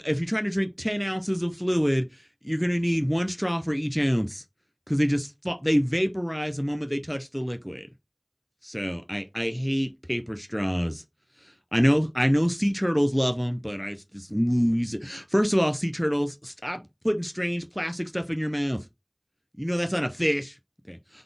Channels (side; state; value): both; identical; correlation 1.00